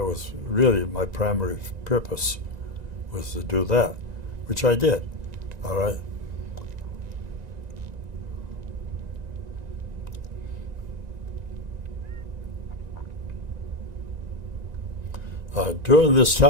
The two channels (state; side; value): late; left; 1.9 ms